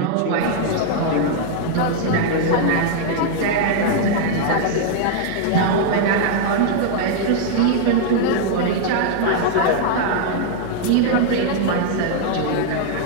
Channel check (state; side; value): different; both; correlation 0.00